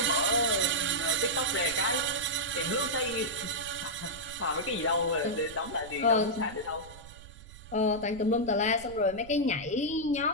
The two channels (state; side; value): noise; right; rumble, 18 dB below the sound